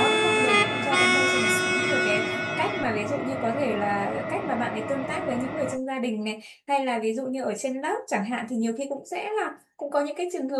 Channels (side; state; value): both; identical; correlation 1.00